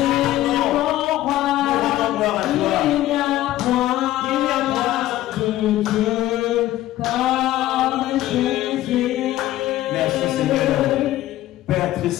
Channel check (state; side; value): quieter; right; 14.8 dB